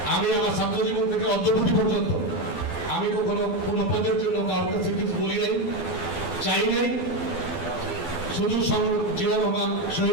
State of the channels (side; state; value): right; late; 12 ms